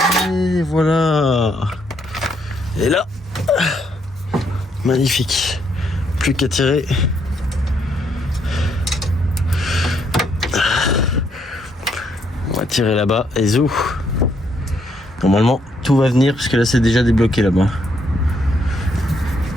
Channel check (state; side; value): normal; both; correlation 0.73